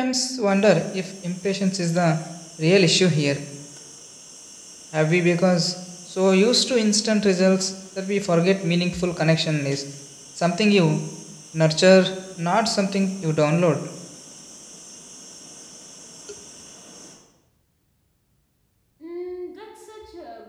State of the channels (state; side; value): identical; both; correlation 1.00